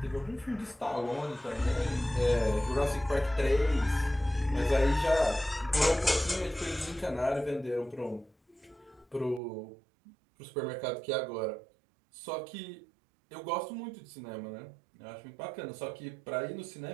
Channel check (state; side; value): drops out; left; at 9.4 s